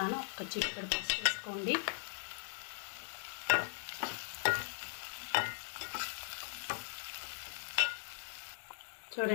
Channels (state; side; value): silent; right; digital silence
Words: ఒక చిటికెడు పసుపు వేసుకోండి.